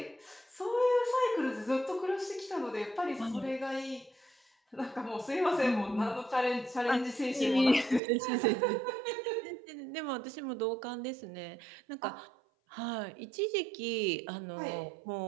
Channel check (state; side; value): drops out; left; at 8.0 s